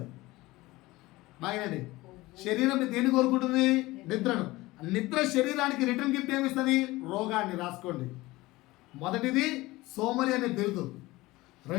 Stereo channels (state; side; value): quieter; right; 19.7 dB